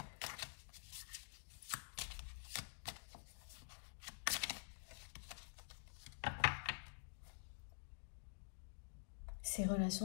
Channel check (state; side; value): silent; right; digital silence